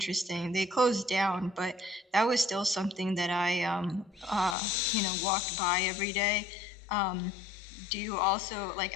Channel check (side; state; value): right; drops out; at 4.5 s